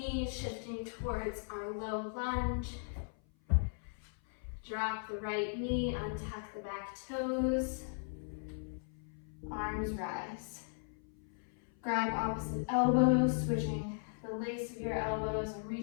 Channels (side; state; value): right; silent; 53 dB below the other